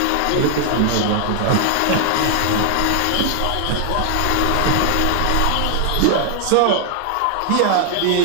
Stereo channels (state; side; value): different; both; correlation 0.00